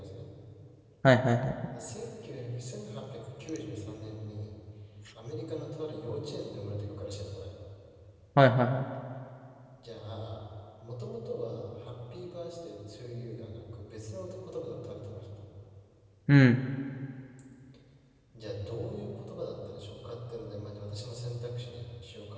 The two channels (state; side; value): identical; both; correlation 1.00